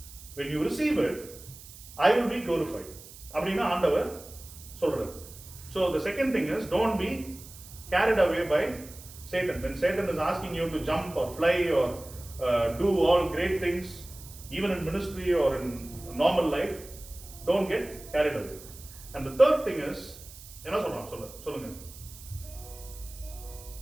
When you receive it, I will be glorified. அப்படின்னா ஆண்டவர் சொல்றார். So the second thing is, don't be carried away by Satan. When Satan is asking you to jump or fly or do all great things, even in ministry or in normal life, don't get carried away. And the third thing is, என்ன சொல்றான் சொல்லுங்க.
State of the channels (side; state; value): right; noise; hiss, 17 dB below the sound